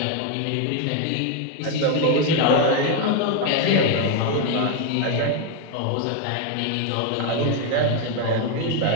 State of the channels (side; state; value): both; different; correlation 0.01